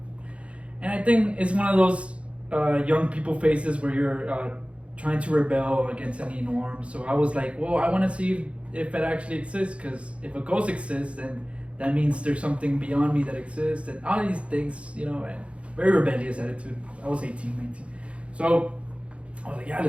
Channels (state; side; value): late; left; 0.061 ms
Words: And I think it's one of those young people phases where you're trying to rebel against any norm. So I was like, well, I want to see if it actually exists, because if a ghost exists, then that means there's something beyond me that exists, and all these things, you know, and very rebellious attitude. I was 18, 19. So I was like, yeah,